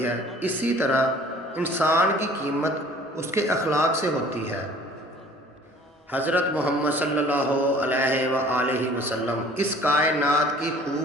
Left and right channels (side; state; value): both; normal; correlation 0.51